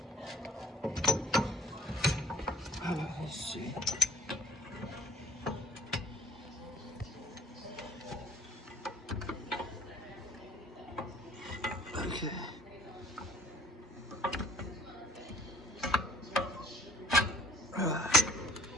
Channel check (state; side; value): normal; both; correlation 0.54